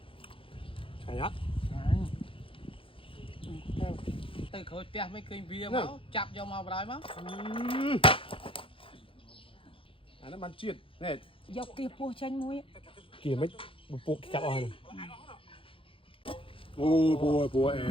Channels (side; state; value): right; late; 0.26 ms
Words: Hay á. Từ khối tia mấy kênh bia máu chặt vô màu đói máu. Nó bán chiên này. Dọc kia po chanh muối. Kìa mấy bộ cặp oi này. Ôi bùa